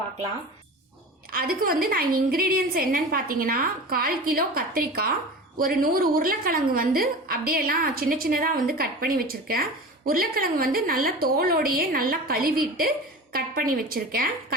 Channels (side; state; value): both; normal; correlation 0.33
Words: அதுக்கு வந்து நான் இன்கிரீடியன்ஸ் என்னன்னு பார்த்தீங்கன்னா 1/4 கிலோ கத்திரிக்காய், ஒரு 100 உருளைக்கிழங்கு வந்து அப்படியே எல்லாம் சின்ன சின்னதாக வந்து கட் பண்ணி வச்சிருக்கேன். உருளைக்கிழங்கு வந்து நல்லா தோலோடையே நல்லா கழுவிட்டு கட் பண்ணி வச்சிருக்கேன்.